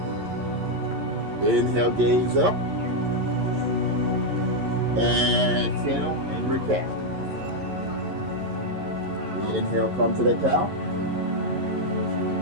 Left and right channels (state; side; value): late; left; 11 ms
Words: Inhale, gaze up. Exhale, angry cat. Inhale, come to that cow.